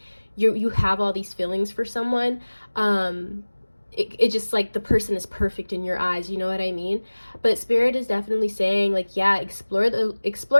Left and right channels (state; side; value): inverted; both; correlation -1.00